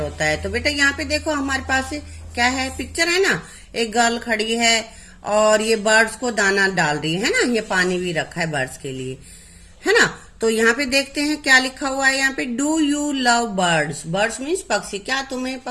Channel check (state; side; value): identical; both; correlation 1.00